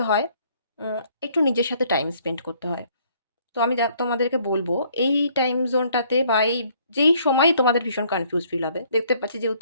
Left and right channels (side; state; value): both; inverted; correlation -0.64